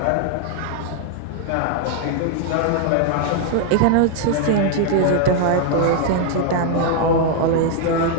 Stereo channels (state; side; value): different; both; correlation 0.00